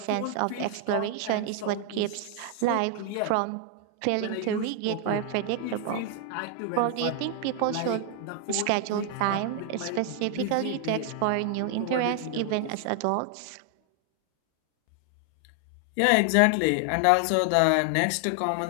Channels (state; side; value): different; both; correlation 0.00